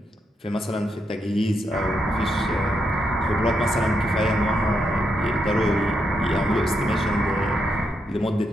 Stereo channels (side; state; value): both; normal; correlation 0.81